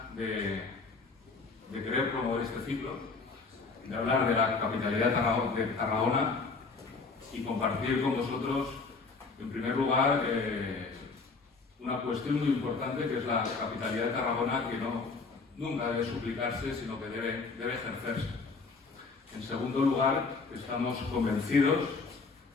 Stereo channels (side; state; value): right; quieter; 4.3 dB